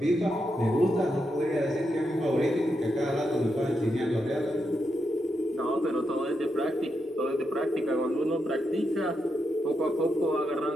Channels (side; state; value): both; normal; correlation 0.84